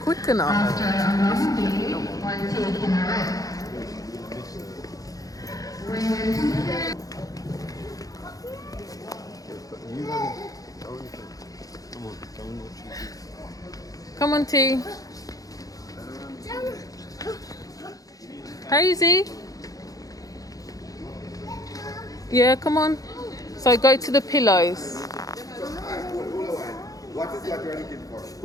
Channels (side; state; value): right; late; 0.17 ms